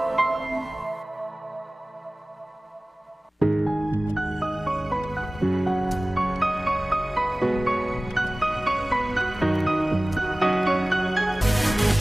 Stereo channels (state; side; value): normal; both; correlation 0.98